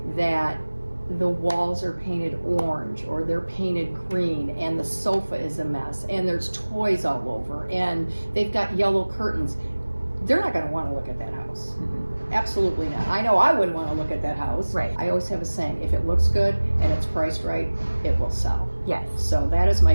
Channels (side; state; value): both; inverted; correlation -1.00